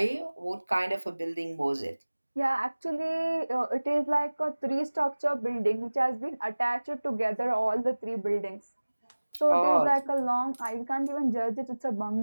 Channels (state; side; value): inverted; both; correlation -1.00